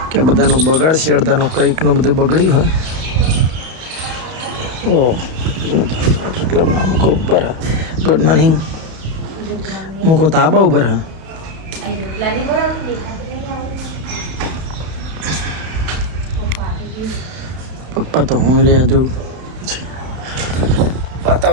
કે બધાનું બગાડશે અડધાનું કંઈકનું બધું બગડ્યું હા. ઓ ક્લબના મૂકો ઉપર હા. ગુડ મોર્નિંગ મૂકો તાબા ઉપર હા. પપ્પા તો હું રહ્યા જો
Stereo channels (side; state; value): left; late; 31 ms